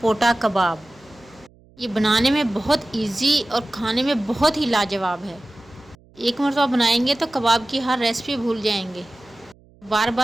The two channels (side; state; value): right; noise; hum, 28 dB below the sound